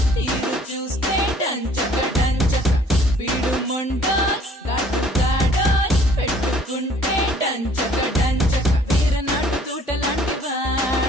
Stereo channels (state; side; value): normal; both; correlation 0.57